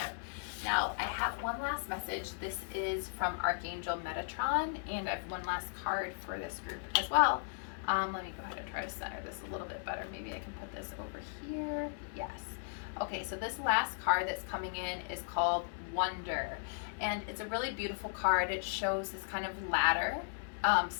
Now, I have one last message. This is from Archangel Metatron, and I have one last card for this group as well. Let me go ahead and try to center this a little bit better. Maybe I can put this over here. Yes. Okay, so this last card that's coming in is called Wonder, and it's a really beautiful card. It shows this kind of ladder,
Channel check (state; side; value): silent; right; 54 dB below the other